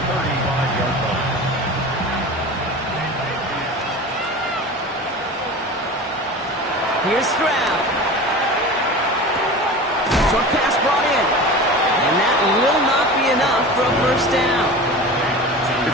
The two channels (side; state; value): both; normal; correlation 0.34